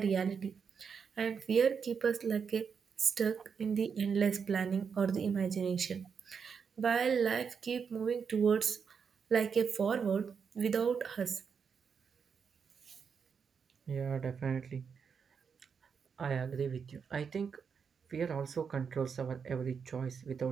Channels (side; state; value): left; quieter; 6.3 dB